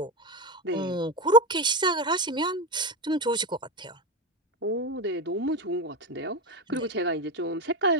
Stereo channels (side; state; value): both; normal; correlation 0.15